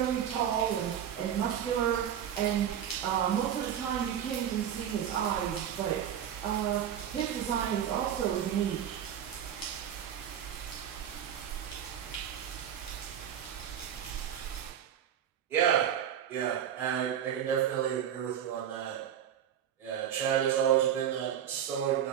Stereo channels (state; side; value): quieter; left; 9.6 dB